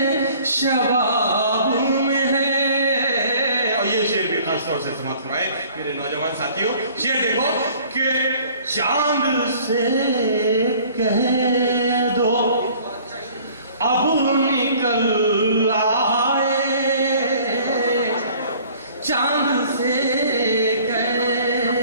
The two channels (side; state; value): both; inverted; correlation -0.53